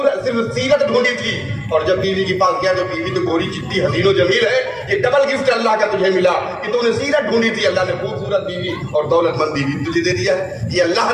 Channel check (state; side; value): identical; both; correlation 1.00